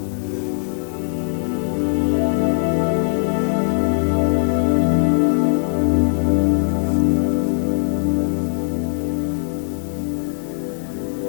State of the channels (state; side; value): silent; right; 66 dB below the other